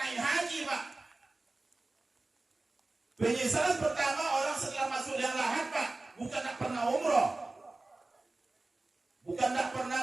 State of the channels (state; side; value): quieter; left; 3.1 dB